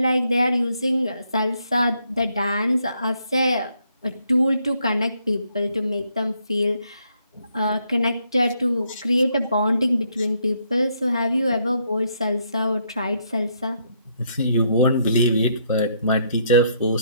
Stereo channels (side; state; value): both; inverted; correlation -0.73